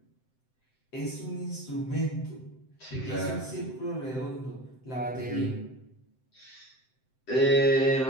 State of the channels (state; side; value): late; right; 7.8 ms